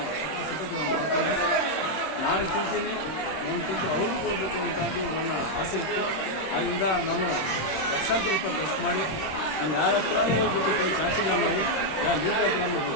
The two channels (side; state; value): right; late; 26 ms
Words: ಸತತ ಮಾಡ್ಕೊಂಡೆ. ನಾನು ತಿಂತೀನಿ, ಒಂದು ತುತ್ತು ಅವ್ರಿಗೂ ಕೊಡಬೇಕು ಅಂತದ್ದು ನನ್ನ ಆಸೆ ಇತ್ತು. ಆದ್ದರಿಂದ ನಾನು ಲಕ್ಷಾಂತರ ರೂಪಾಯಿ ಖರ್ಚು ಮಾಡಿ ನಾನು ಯಾರ ಹತ್ರನೂ ಹೋಗ್ಬಿಟ್ಟು ಕೈ ಚಾಚಿಲ್ಲ. ನಾವು ಯಾರ ಲೀಡರ್ ಹತ್ರನೂ